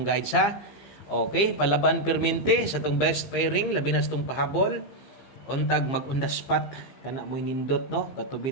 sa okay palaban permente sa tong best pairing labi na sa tong pahabol. Untag mag-on the spot kana mo nindot no katubi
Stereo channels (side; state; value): right; late; 15 ms